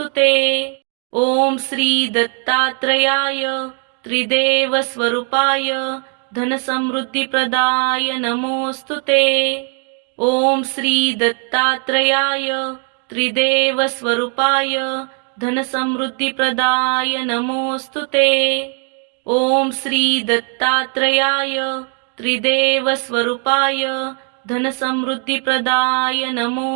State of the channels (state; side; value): quieter; left; 39.4 dB